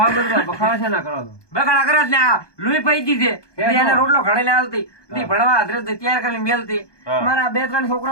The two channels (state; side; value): late; right; 1.2 ms